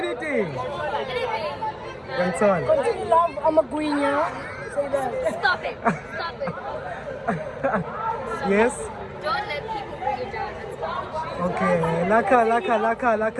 Ngithola. Continue love, I'm a queen, yeah. Say that. Stop it. Stop it. Yes. Don't let people bring you down. Okay.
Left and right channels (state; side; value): identical; both; correlation 1.00